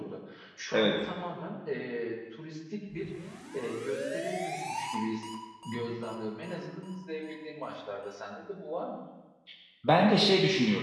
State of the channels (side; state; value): both; identical; correlation 1.00